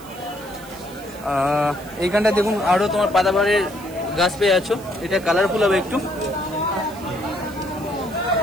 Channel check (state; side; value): noise; right; hiss, 20 dB below the sound